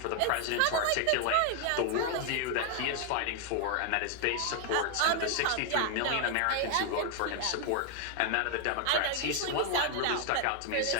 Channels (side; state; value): both; different; correlation 0.00